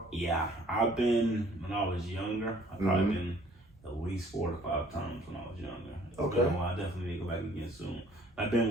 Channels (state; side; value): normal; both; correlation 0.57